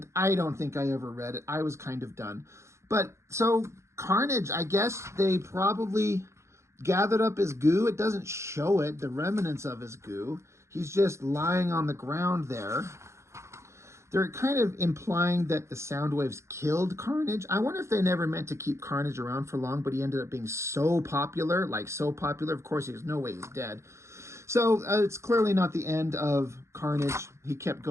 I don't think I ever read it. I was kind of done. But so Carnage, I guess they probably gathered up his goo. It doesn't show it, the remnants of his goo. He's just lying on the ground there. They're kind of implying that the sound waves killed Carnage. I wonder if they never meant to keep Carnage around for long, but he ended up being so popular, like so popular. Of course, there's no way he's dead. So it's clearly not the end of Carnage. He kept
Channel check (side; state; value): left; late; 0.14 ms